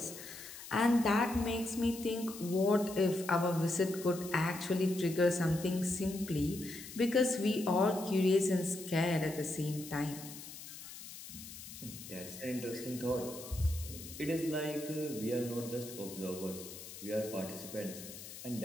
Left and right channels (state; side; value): noise; left; hiss, 13 dB below the sound